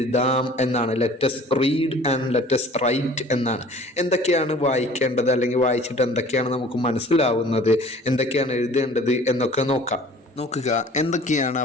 എന്നാണ്. Let's read and let's write എന്നാണ്. എന്തൊക്കെയാണ് വായിക്കേണ്ടത്, അല്ലെങ്കിൽ വായിച്ചിട്ട് എന്തൊക്കെയാണ് നമുക്ക് മനസ്സിലാവുന്നത്, എന്തൊക്കെയാണ് എഴുതേണ്ടത് എന്നൊക്കെ നോക്കാം. നോക്കുക, എന്തൊക്കെയാണ് ആ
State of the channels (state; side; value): normal; both; correlation 0.48